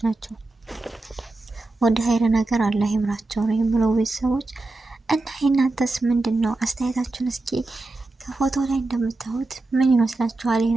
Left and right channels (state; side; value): quieter; left; 3.1 dB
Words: ናቸው። ወደ ሀይር ነገር አላህ ይምራቸው ነው የምለው ቤተሰቦች። እና የእናንተስ ምንድን ነው አስተያየታችሁን? እስኪ ከፎቶ ላይ እንደምታዩት ምን ይመስላችኋል? ይህ